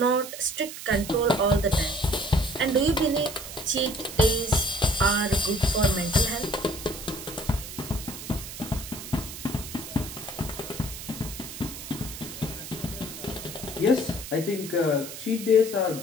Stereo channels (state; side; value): noise; right; hiss, 10 dB below the sound